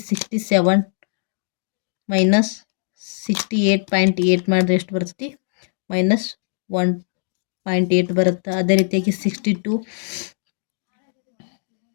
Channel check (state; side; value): silent; right; digital silence